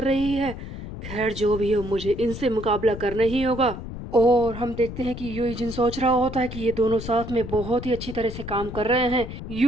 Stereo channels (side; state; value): left; noise; rumble, 9 dB below the sound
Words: रही है। खैर जो भी हो, मुझे इनसे मुकाबला करना ही होगा। और हम देखते हैं कि यूजिन सोच रहा होता है कि ये दोनों साथ में बहुत ही अच्छी तरह से काम कर रहे हैं।